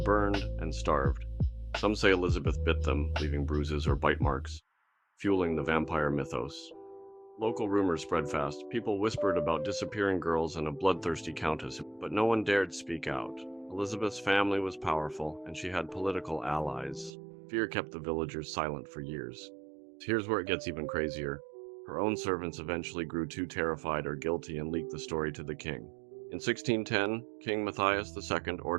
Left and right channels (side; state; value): left; drops out; at 17.1 s